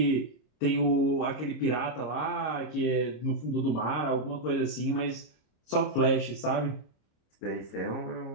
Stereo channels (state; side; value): late; right; 26 ms